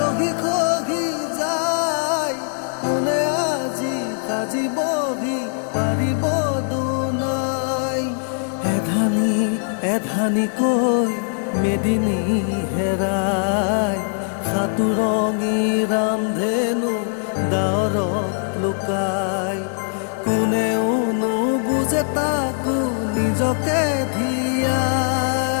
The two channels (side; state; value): right; silent; digital silence